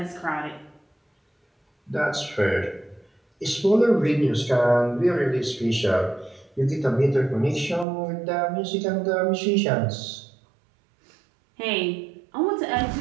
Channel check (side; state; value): left; drops out; at 7.9 s